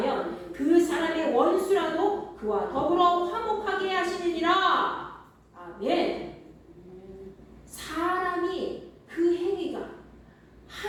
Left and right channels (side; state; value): both; identical; correlation 1.00